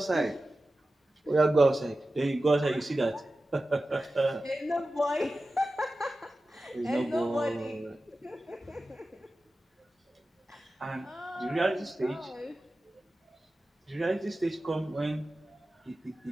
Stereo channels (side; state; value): both; normal; correlation 0.94